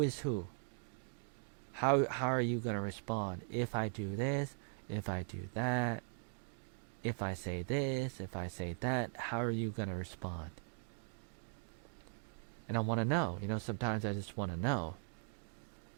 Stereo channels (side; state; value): left; silent; 51 dB below the other